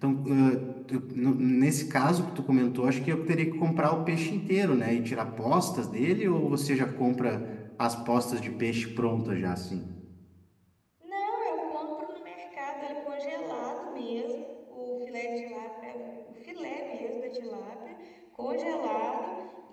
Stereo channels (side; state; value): both; identical; correlation 1.00